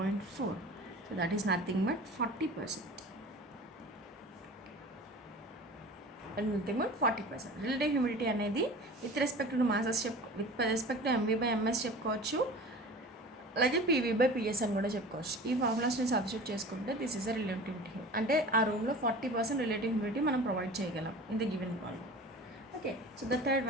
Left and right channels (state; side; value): normal; both; correlation 0.38